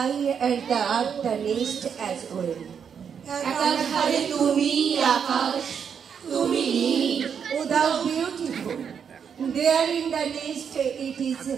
and thou art the nest as well. একাধারে তুমি আকাশ, তুমি নীল। O thou beautiful, there in the nest it is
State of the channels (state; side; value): quieter; left; 7.3 dB